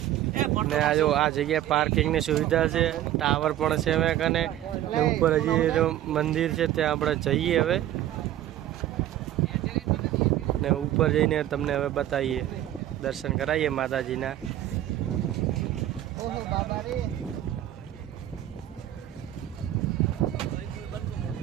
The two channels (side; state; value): left; quieter; 12.7 dB